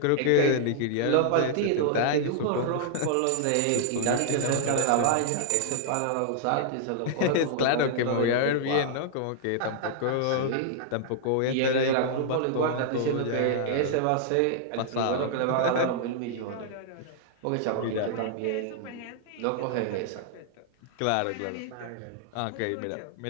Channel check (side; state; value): both; different; correlation -0.01